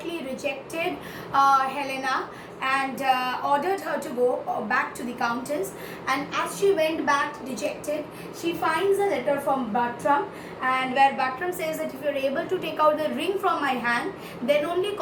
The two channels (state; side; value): identical; both; correlation 1.00